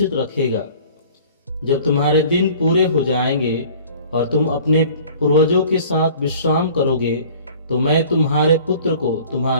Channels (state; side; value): inverted; both; correlation -0.49